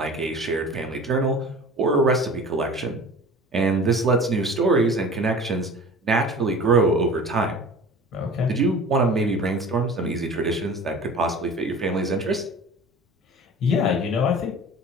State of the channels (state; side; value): normal; both; correlation 0.40